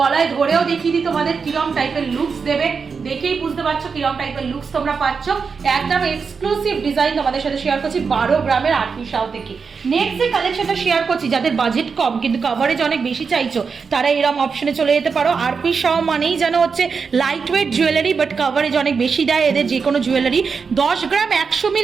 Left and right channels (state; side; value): quieter; left; 5.4 dB